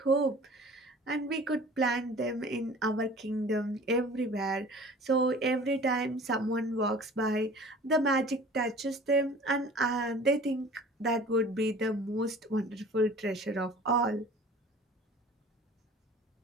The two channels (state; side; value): normal; both; correlation 0.45